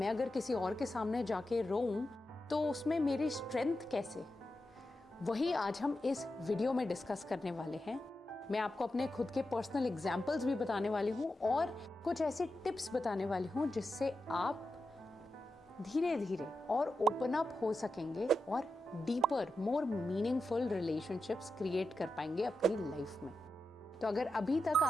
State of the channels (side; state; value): both; normal; correlation 0.89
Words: अगर किसी और के सामने जाके रोऊं तो उसमें मेरी स्ट्रेंथ कैसे? वही आज हम इस वीडियो में डिस्कस करने वाले हैं। मैं आपको अपने खुद के पर्सनल एग्जाम्पल्स भी बताने वाली हूँ और कुछ ऐसे टिप्स बताने वाली हूँ जिससे आप धीरे धीरे और ओपन अप हो सकेंगे और deeper, more meaningful relationships create कर पाएंगे अपनी लाइफ में। तो अगर अभी तक